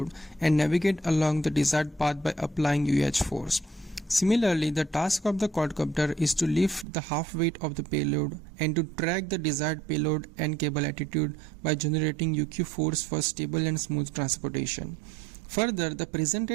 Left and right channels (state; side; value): drops out; left; at 6.9 s